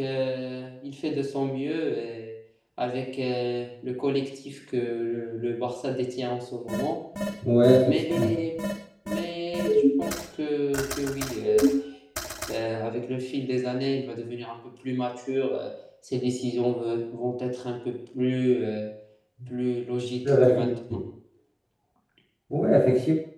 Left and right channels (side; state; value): both; identical; correlation 1.00